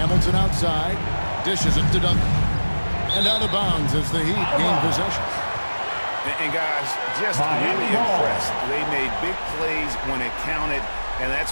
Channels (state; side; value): inverted; both; correlation -1.00